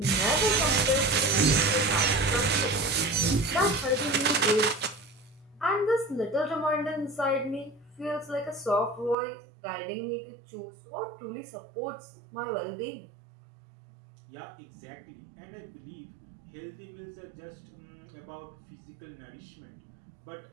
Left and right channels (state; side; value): drops out; left; at 9.2 s